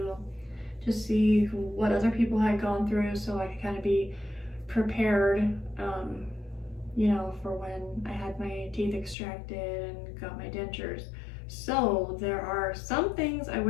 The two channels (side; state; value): right; drops out; at 9.2 s